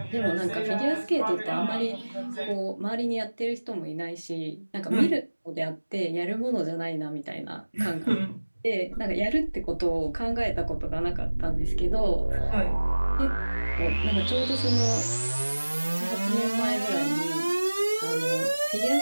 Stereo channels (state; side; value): inverted; both; correlation -1.00